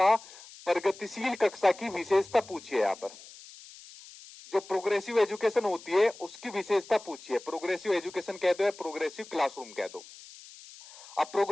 प्रगतिशील कक्षा की विशेषता पूछिए। यहाँ पर जो प्रोग्रेसिव एजुकेशन होती है उसकी विशेषता पूछिए। प्रोग्रेसिव एजुकेशन कह दो या प्रोग्रेसिव क्लासरूम कह दो। अब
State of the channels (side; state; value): left; noise; hiss, 19 dB below the sound